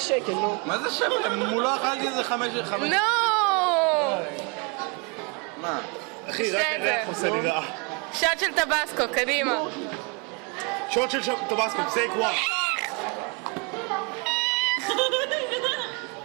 שקל, נו. מה זה שקל? מולו אכלתי איזה 5 שקל. נו. מה? אחי, רק הריח עושה לי רע. שוט של טבסקו, קדימה. שוט של טבסקו, טייק 1.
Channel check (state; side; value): quieter; left; 32.8 dB